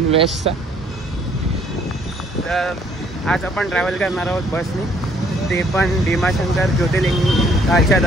वेस्टचा. तर आज आपण ट्रॅव्हल करणार आहोत बसने, ते पण भीमाशंकर ज्योतिर्लिंगाच्या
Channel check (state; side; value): normal; both; correlation 0.63